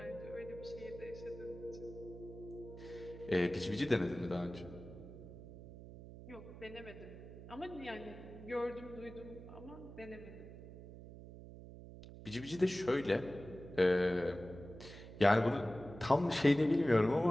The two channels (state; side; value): noise; right; hum, 14 dB below the sound